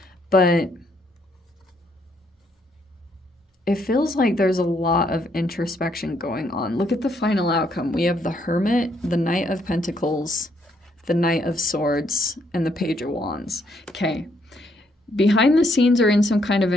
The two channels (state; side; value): normal; both; correlation 0.72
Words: but it feels like there's a lot of introspection going on. Look at the final outcome. We have the Hermit, the Knight of Pentacles, the Knight of Swords, and the Page of Wands. Okay. Behind the scenes or in some kind of